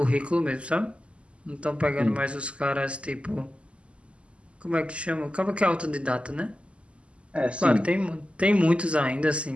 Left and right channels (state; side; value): late; left; 0.056 ms